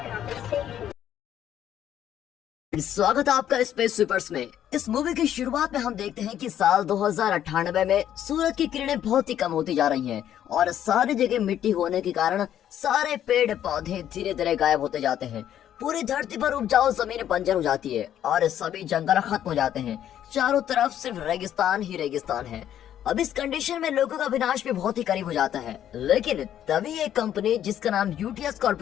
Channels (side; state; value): right; quieter; 10.7 dB